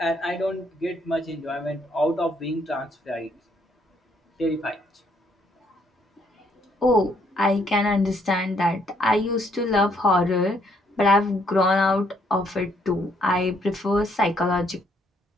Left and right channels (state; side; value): normal; both; correlation 0.70